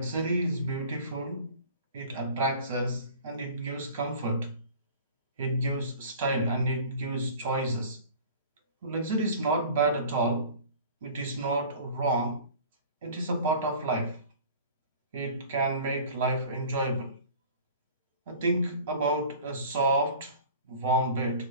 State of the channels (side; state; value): both; inverted; correlation -0.43